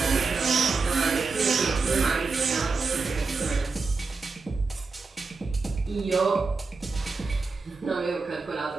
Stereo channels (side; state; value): left; quieter; 4.3 dB